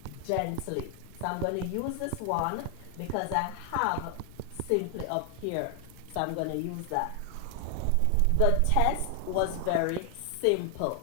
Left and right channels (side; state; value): both; different; correlation 0.00